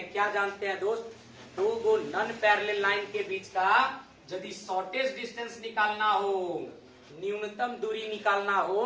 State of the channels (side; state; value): both; identical; correlation 1.00